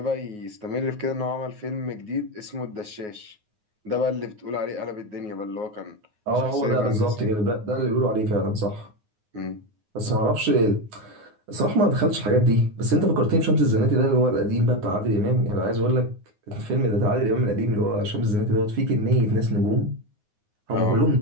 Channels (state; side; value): late; left; 9.6 ms